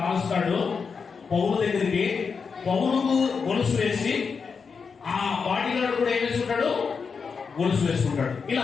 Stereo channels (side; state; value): right; quieter; 5.5 dB